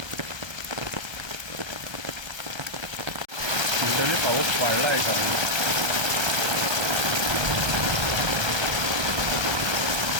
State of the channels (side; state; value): left; late; 1.3 ms